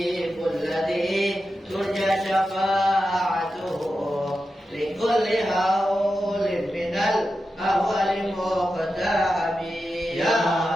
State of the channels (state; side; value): normal; both; correlation 0.90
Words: الذي ترجى شفاعته لكل هول من الأهوال مقتحم يا